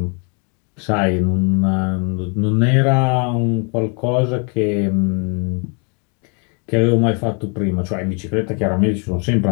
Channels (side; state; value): right; quieter; 37.7 dB